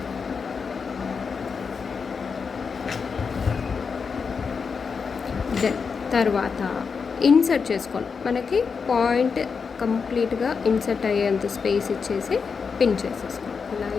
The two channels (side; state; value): right; quieter; 5.5 dB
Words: then తర్వాత ఇన్సర్ట్ చేసుకోండి. మనకి పాయింట్ కంప్లీట్గా ఇన్సర్ట్ అయ్యేంత స్పేస్ ఇచ్చేసి పిన్ చేసేసుకోండి. ఇలా